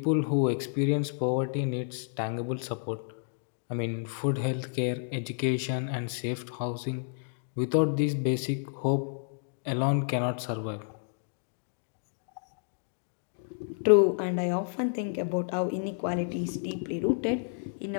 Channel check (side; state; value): right; silent; digital silence